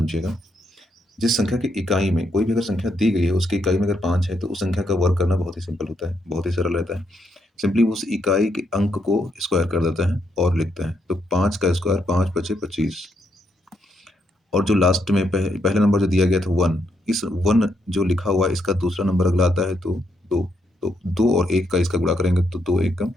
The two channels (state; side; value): normal; both; correlation 0.78